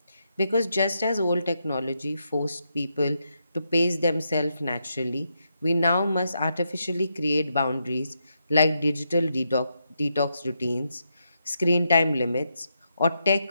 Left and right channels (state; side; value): inverted; both; correlation -0.82